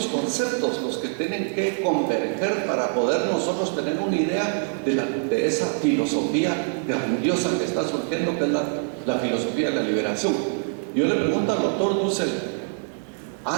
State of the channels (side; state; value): left; silent; 62 dB below the other